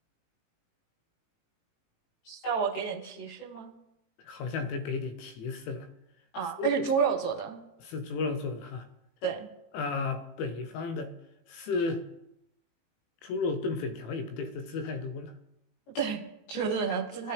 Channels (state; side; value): late; right; 18 ms